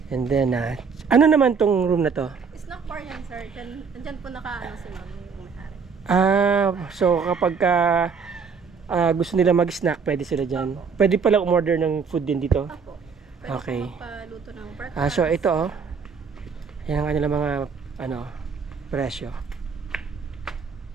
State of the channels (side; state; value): left; quieter; 5.7 dB